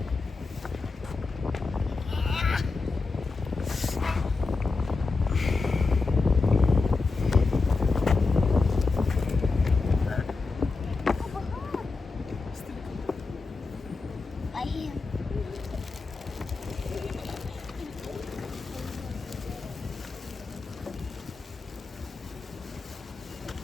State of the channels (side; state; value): right; quieter; 4.0 dB